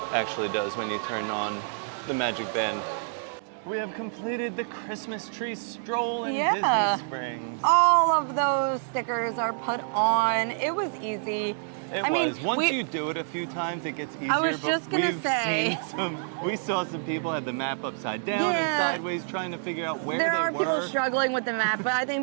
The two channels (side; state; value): left; silent; digital silence